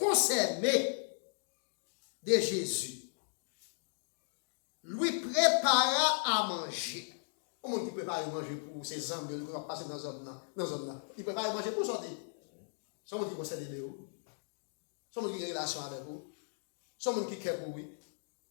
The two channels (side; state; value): right; silent; digital silence